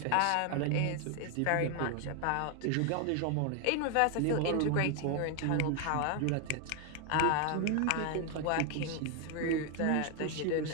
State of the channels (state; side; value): different; both; correlation 0.01